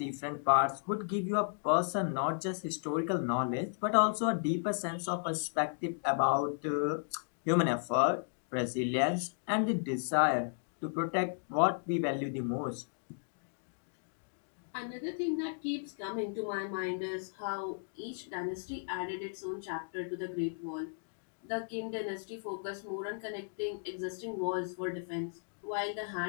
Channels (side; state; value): right; silent; digital silence